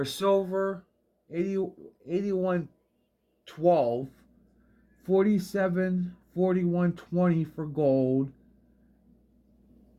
silver, 81.12, 41.20 for gold,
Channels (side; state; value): both; identical; correlation 1.00